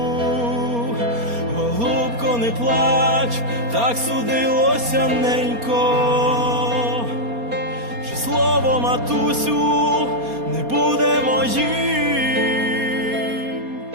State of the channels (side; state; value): left; late; 4.3 ms